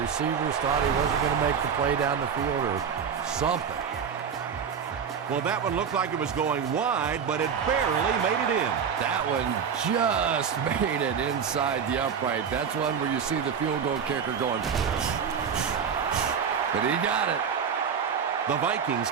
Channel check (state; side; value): quieter; left; 7.0 dB